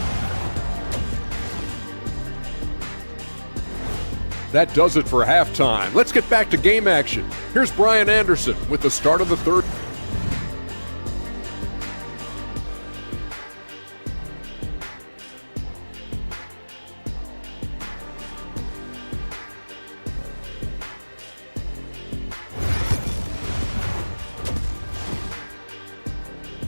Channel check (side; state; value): both; inverted; correlation -1.00